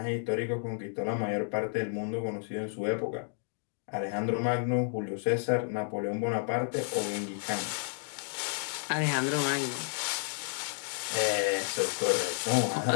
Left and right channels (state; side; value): silent; right; digital silence